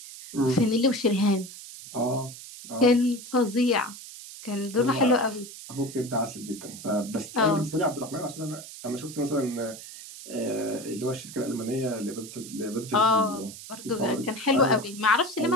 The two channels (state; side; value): noise; right; hiss, 14 dB below the sound